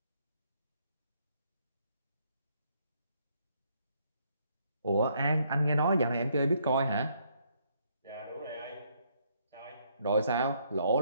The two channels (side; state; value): both; inverted; correlation -0.70